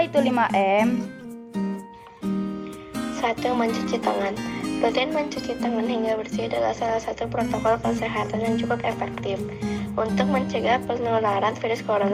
itu 5M? 1. Mencuci tangan. Rutin mencuci tangan hingga bersih adalah salah satu protokol kesehatan yang cukup efektif untuk mencegah penularan virus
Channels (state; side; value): identical; both; correlation 1.00